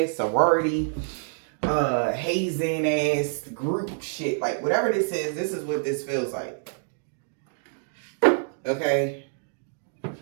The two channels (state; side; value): silent; left; 60 dB below the other